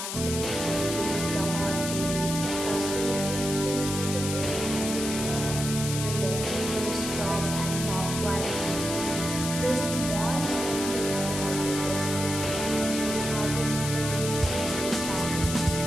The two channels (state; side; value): noise; left; hiss, 5 dB below the sound